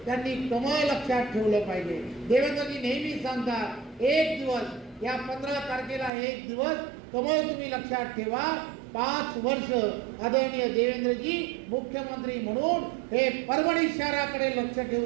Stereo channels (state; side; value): drops out; left; at 6.1 s